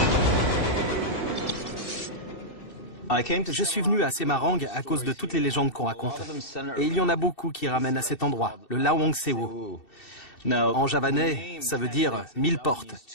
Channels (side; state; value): right; late; 2.7 ms